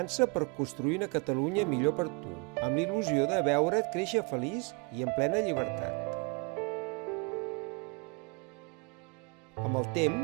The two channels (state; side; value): quieter; left; 32.5 dB